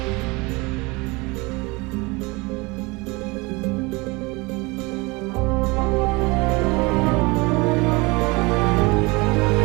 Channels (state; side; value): quieter; left; 25.4 dB